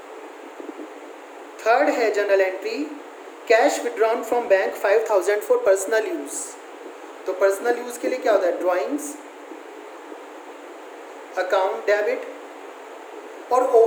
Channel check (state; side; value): identical; both; correlation 1.00